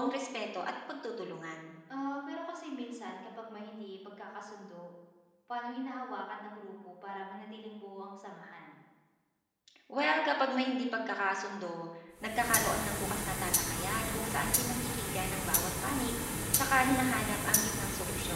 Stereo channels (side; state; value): both; identical; correlation 1.00